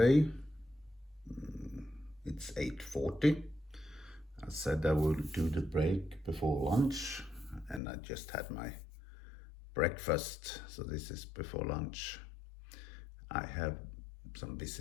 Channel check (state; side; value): drops out; right; at 7.8 s